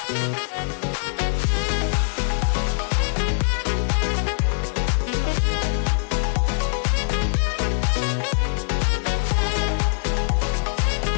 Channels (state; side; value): silent; right; digital silence